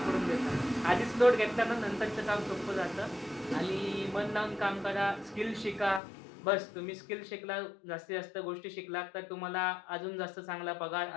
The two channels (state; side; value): drops out; right; at 6.0 s